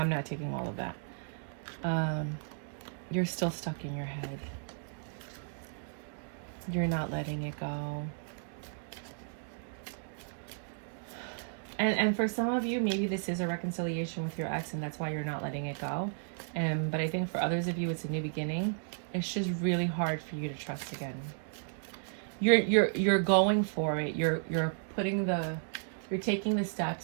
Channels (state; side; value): silent; left; digital silence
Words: not taking all of that. You're still stuck in your head. You're not letting it go. And for some of you, maybe this is a reconciliation with your ex and that's why you're not letting it go. But I think for others of you, it's a new beginning. It's just really hard for you to trust again. You're going for it. You're taking the